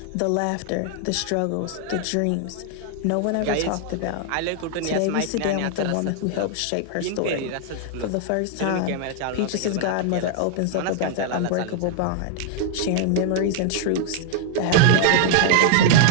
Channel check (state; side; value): different; both; correlation 0.00